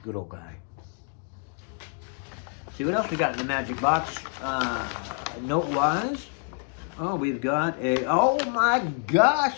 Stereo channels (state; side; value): quieter; right; 39.4 dB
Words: Good old guy. See what else we got in the magic box. Note-wise. Oh, we've got a, oh my